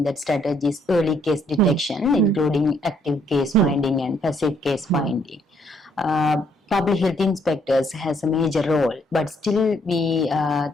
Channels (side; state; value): both; normal; correlation 0.68